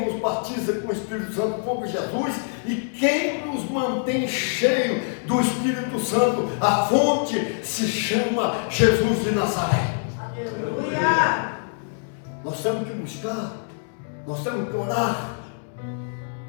nos batiza com o Espírito Santo foi Jesus, e quem nos mantém cheio do Espírito Santo, a fonte se chama Jesus de Nazaré. Aleluia! Nós temos que buscar, nós temos que orar,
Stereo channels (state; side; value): silent; right; 62 dB below the other